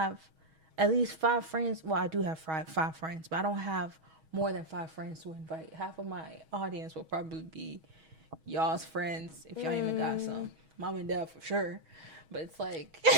at least 5 friends. Well, I do have five friends, but I don't have more than 5 friends to invite. Half of my audience will probably be y'all's friends, if y'all even got some. Mom and dad for sure. But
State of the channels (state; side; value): late; left; 6.3 ms